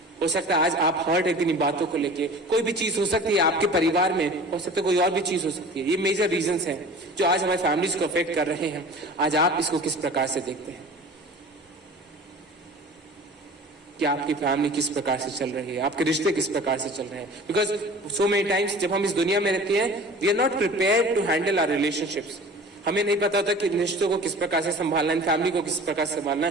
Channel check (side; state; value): both; normal; correlation 0.41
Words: हो सकता है आज आप हर्ट है किन्हीं बातों को लेके। कोई भी चीज हो सकती है आपके परिवार में, हो सकता है कोई और भी चीज हो सकती है। ये मेजर रीजंस हैं जो आज हमारी फैमिलीज को अफेक्ट कर रहे हैं। आज आप इसको किस प्रकार से देखते हैं कि आपकी फैमिली किस प्रकार से चल रही है, आपके रिश्ते किस प्रकार से चल रहे हैं? बिकॉज सो मेनी टाइम्स जब हम इस दुनिया में रहते हैं, we are not prepared to handle our relationships. हमें नहीं पता होता कि रिश्तों को किस प्रकार से संभालना है, फैमिली को किस प्रकार से संभालना